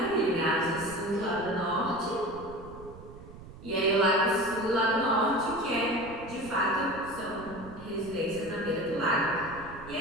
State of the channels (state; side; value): noise; right; rumble, 17 dB below the sound